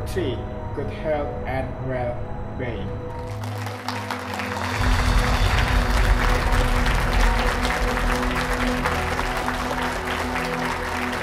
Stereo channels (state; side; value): identical; both; correlation 1.00